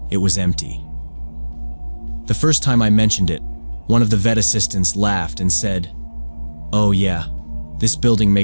it was empty. The first time I mentioned it, one of the vet assistants laughed and said, "Oh yeah, this building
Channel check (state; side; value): inverted; both; correlation -1.00